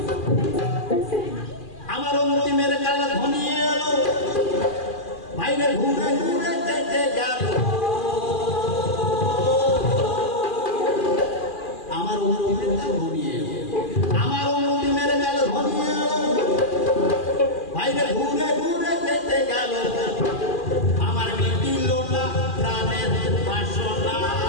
আমার অন্তিমের কাল ঘনিয়ে এলো, বাইরে ঘুরে ঘুরে কেটে গেল, আমার অন্তিমের কাল ঘনিয়ে এলো, আমার অন্তিমের কাল ঘনিয়ে এলো, বাইরে ঘুরে ঘুরে কেটে গেল, আমার মিটিল না প্রাণের বাসনা,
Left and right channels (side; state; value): right; late; 2.4 ms